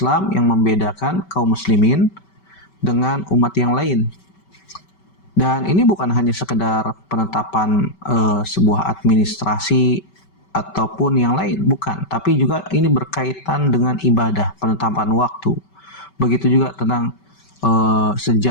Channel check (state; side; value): late; right; 5.2 ms